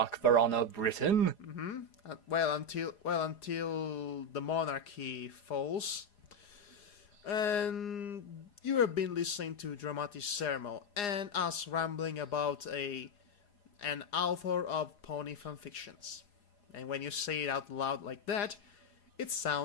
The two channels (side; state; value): right; late; 4.9 ms